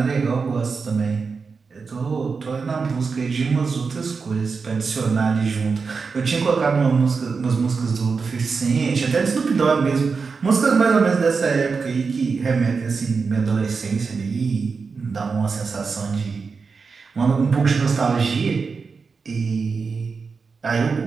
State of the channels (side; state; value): left; quieter; 5.0 dB